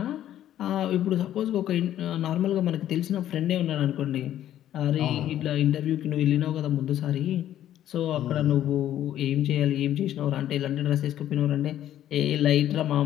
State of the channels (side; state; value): right; quieter; 11.9 dB